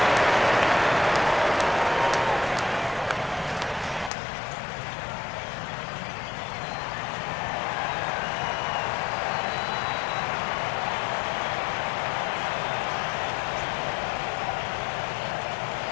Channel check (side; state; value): right; drops out; at 4.1 s